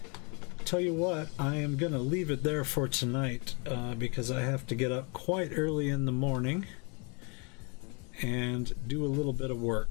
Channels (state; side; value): quieter; right; 33.0 dB